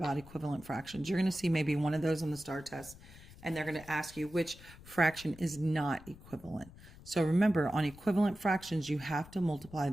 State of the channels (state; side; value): noise; left; rumble, 19 dB below the sound